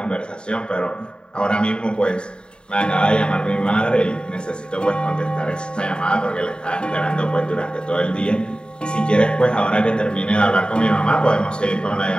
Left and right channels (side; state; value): right; late; 0.050 ms